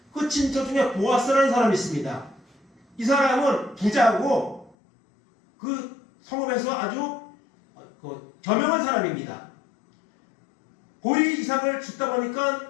그 친척 중에 보아스라는 사람이 있습니다. 이 사람은 부자고 그 성읍에서 아주 저명한 사람입니다. 보리 이삭을 줍다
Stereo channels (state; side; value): drops out; right; at 4.8 s